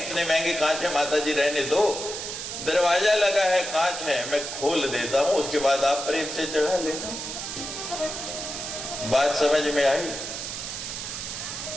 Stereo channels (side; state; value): right; noise; hiss, 6 dB below the sound